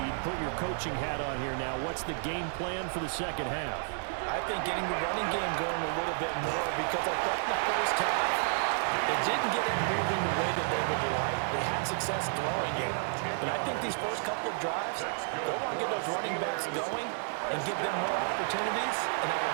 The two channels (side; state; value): left; silent; 57 dB below the other